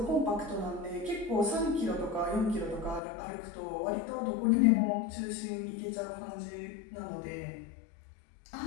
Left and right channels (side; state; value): right; drops out; at 3.0 s